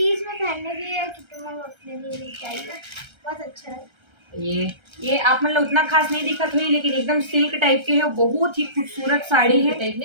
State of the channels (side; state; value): left; late; 1.3 ms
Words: में पहनने के लिए कि तुम्हें अपने लिए चाहिए, बहुत अच्छा है। ये आप मतलब उतना खास नहीं दिखत हुई, लेकिन एकदम सिल्क टाइप के है, बहुत ही खूबसूरत साड़ी है। टाइप